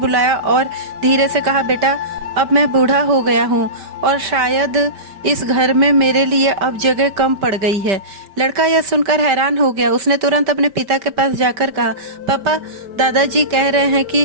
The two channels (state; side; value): late; left; 5.1 ms